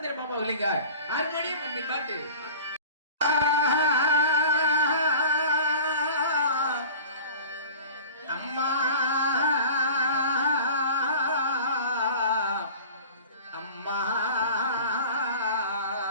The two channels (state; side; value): inverted; both; correlation -0.40